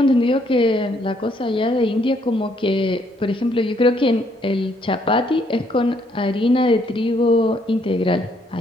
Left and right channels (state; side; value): normal; both; correlation 0.69